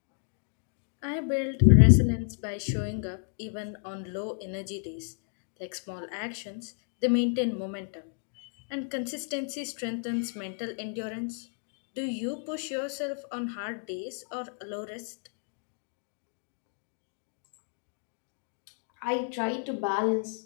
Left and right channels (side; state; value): right; silent; 56 dB below the other